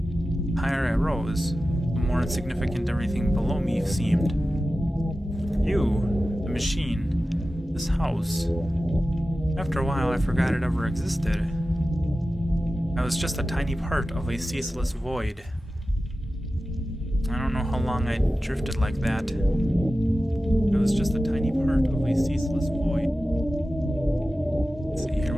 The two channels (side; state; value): both; normal; correlation 0.94